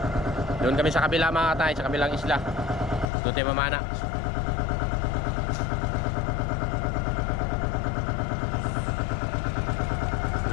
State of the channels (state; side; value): drops out; right; at 3.1 s